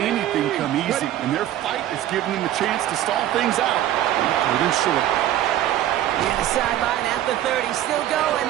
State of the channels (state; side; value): quieter; left; 12.6 dB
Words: come easy. And their fight is giving them a chance to stall things out. Third and short. And the sideline at the 30, still going.